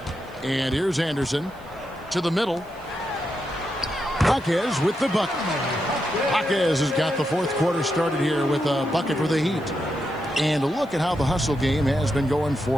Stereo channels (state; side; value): noise; right; hiss, 29 dB below the sound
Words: And here's Anderson to the middle. Jaquez with the bucket. Jaquez has got the fourth quarter started here with a bucket for the Heat. And look at how the hustle game has been going